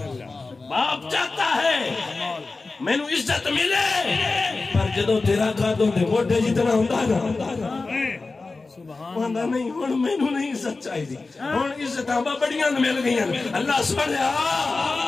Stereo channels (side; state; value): right; quieter; 3.7 dB